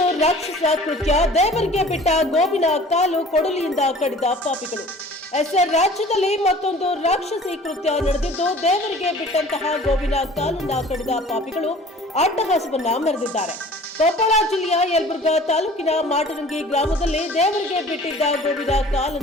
ರಾಕ್ಷಸ ಕೃತ್ಯ, ದೇವರಿಗೆ ಬಿಟ್ಟ ಗೋವಿನ ಕಾಲು ಕೊಡಲಿಯಿಂದ ಕಡಿದ ಪಾಪಿಗಳು. ರಾಜ್ಯದಲ್ಲಿ ಮತ್ತೊಂದು ರಾಕ್ಷಸಿ ಕೃತ್ಯ ನಡೆದಿದ್ದು, ದೇವರಿಗೆ ಬಿಟ್ಟಂತಹ ಗೋವಿನ ಕಾಲನ್ನ ಕಡಿದ ಪಾಪಿಗಳು ಅಟ್ಟಹಾಸವನ್ನ ಮೆರೆದಿದ್ದಾರೆ. ಕೊಪ್ಪಳ ಜಿಲ್ಲೆಯ ಯಲಬುರ್ಗಾ ತಾಲೂಕಿನ ಮಾಟರಂಗಿ ಗ್ರಾಮದಲ್ಲಿ ದೇವರಿಗೆ ಬಿಟ್ಟಿದ್ದ ಗೋವಿನ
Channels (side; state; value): both; normal; correlation 0.47